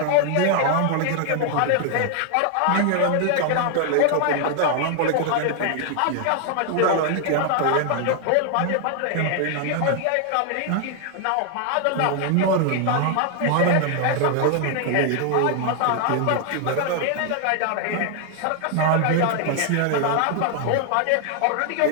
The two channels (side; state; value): both; different; correlation 0.00